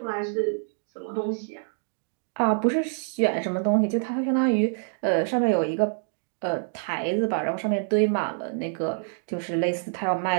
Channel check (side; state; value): left; silent; digital silence